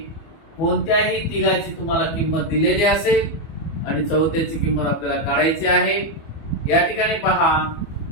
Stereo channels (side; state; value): right; late; 25 ms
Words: कोणत्याही तिघाची तुम्हाला किंमत दिलेली असेल आणि चौथ्याची किंमत आपल्याला काढायची आहे. या ठिकाणी पहा,